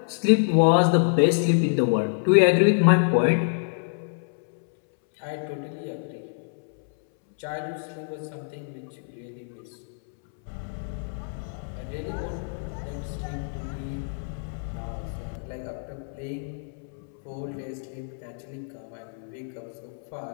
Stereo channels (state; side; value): silent; right; 60 dB below the other